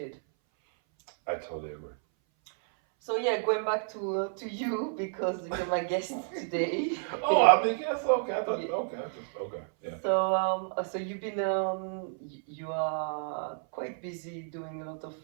I totally agree. So yeah, going back to you because you're my guest today. Oh, I mean, yes, okay. I thought, okay, yeah. So you've been you are quite busy doing a lot of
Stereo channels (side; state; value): left; silent; 57 dB below the other